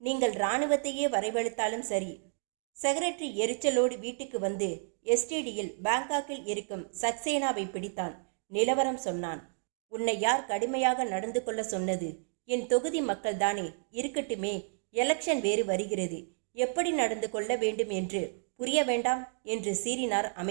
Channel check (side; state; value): left; silent; digital silence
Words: நீங்கள் இராணுவத்தையே வரவழைத்தாலும் சரி. செக்ரட்டரி எரிச்சலோடு வீட்டுக்கு வந்து எஸ்டிடியில் பேங்காக்கில் இருக்கும் சக்சேனாவை பிடித்தான். நிலவரம் சொன்னான். உன்னை யார் கடுமையாக நடந்து கொள்ள சொன்னது? என் தொகுதி மக்கள் தானே. இருக்கட்டுமே, எலெக்ஷன் வேறு வருகிறது. எப்படி நடந்து கொள்ள வேண்டும் என்று புரிய வேண்டாம் என்று சீறினார்